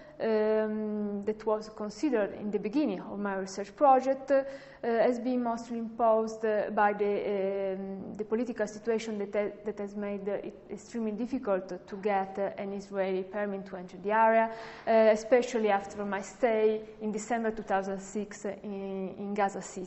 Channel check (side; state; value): both; identical; correlation 1.00